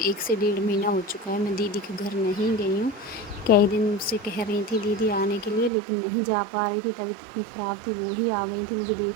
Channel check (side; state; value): left; drops out; at 5.7 s